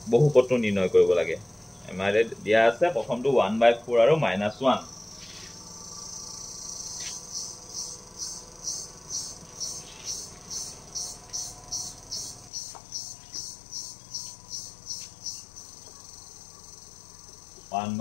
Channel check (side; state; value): right; drops out; at 12.5 s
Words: বহুপদটো নিৰ্ণয় কৰিব লাগে আমাৰ দিয়া আছে প্ৰথমটো 1/4 আৰু -1